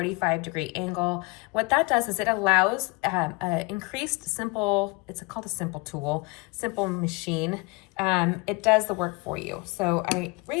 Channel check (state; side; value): quieter; right; 27.2 dB